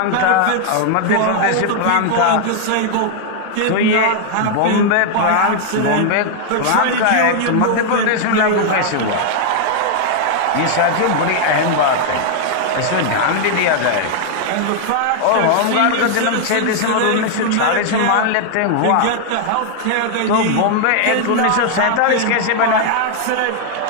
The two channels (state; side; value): different; both; correlation 0.00